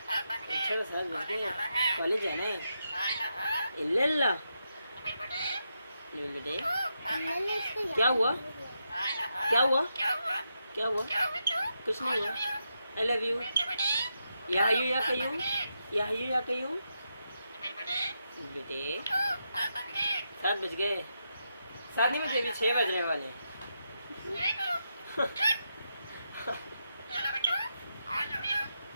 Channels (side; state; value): both; inverted; correlation -0.84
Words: साथ बच गए। कॉलेज जाना है। इल्लल्लाह। नबील बेटे क्या हुआ? क्या हुआ? क्या हुआ? कुछ नहीं हुआ। I love you. या हयू या कयूं? या हयू या कयूं? बेटे 7 बज गए। 7 नहीं बजे, अभी 6 बजने वाले हैं।